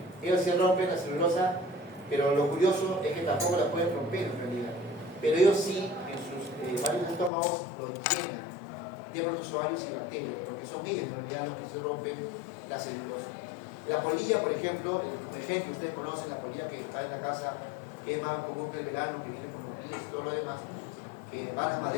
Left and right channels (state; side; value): drops out; right; at 7.3 s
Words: ellos sí rompen la celulosa, pero lo curioso es que tampoco la pueden romper en realidad. Pero ellos sí, en sus varios estómagos, lo llenan de protozoarios y bacterias, porque son ellos en realidad los que se rompen la celulosa. La polilla, por ejemplo, el ejemplo que ustedes conocen, la polilla que está en la casa, que es más común que el verano, que viene con los pies y todo lo demás, que va a la